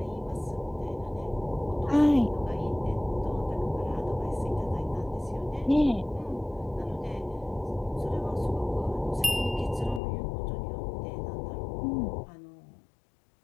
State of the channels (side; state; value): right; drops out; at 10.0 s